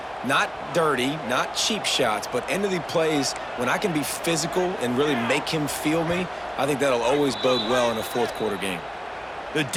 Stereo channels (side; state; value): both; identical; correlation 1.00